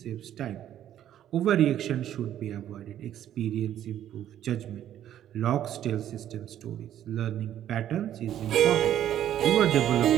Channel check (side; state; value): left; quieter; 11.2 dB